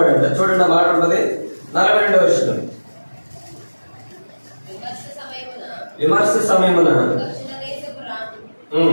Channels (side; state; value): both; inverted; correlation -1.00